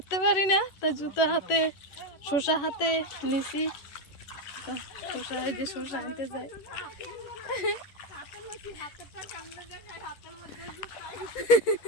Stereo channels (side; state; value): right; late; 11 ms